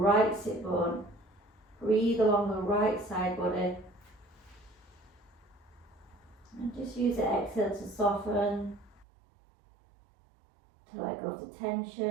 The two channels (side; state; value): left; drops out; at 9.1 s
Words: sit bone. Breathe along the right side body. And just use the exhale to soften, to let go of the